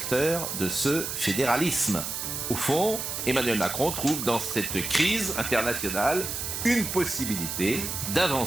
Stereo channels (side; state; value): right; noise; hiss, 4 dB below the sound